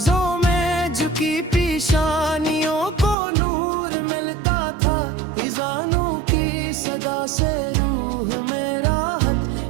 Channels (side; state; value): left; drops out; at 3.2 s